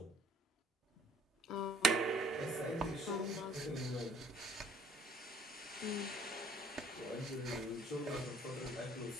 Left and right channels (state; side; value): normal; both; correlation 0.57